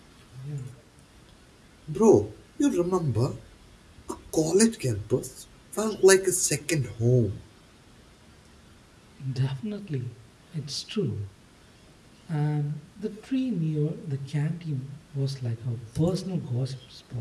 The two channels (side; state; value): both; identical; correlation 1.00